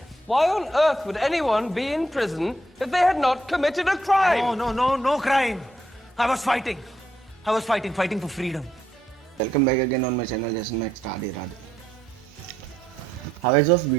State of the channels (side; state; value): both; normal; correlation 0.75